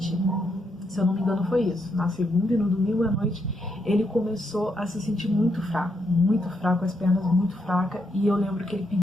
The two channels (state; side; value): normal; both; correlation 0.79